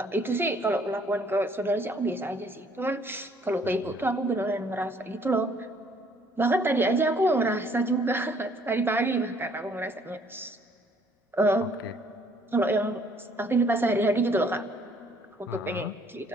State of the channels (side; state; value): both; normal; correlation 0.62